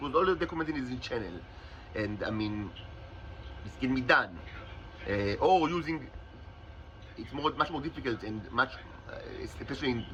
all documented in this channel, and I mean, this can be done. Or using, it's much more difficult and much, especially in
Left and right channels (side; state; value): both; identical; correlation 1.00